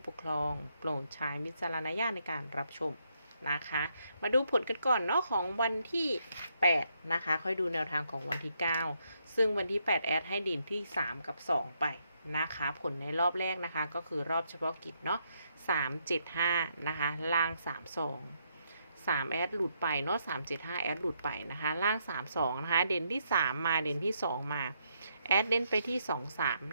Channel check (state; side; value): inverted; both; correlation -0.76